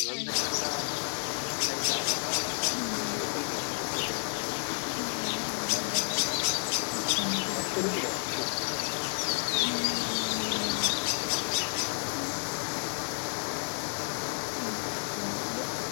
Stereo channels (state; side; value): silent; right; digital silence